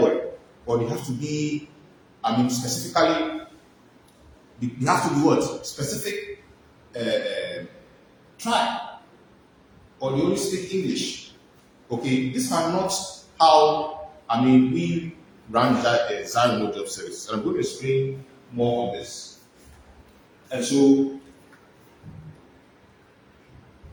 or they have to be, specifically, they have to be what? Specific tribe, or they only speak English. Okay, these are not how, we run that Zion Job Service. And I'm going to explain more on this. And so,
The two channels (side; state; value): both; identical; correlation 1.00